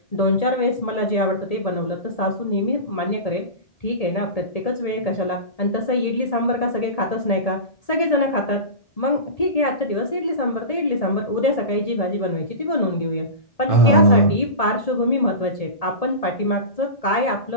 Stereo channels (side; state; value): right; late; 1.8 ms